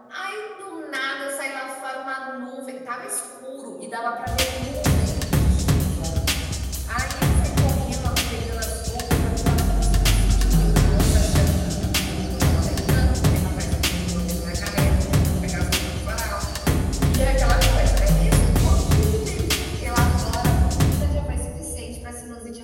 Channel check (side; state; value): both; identical; correlation 1.00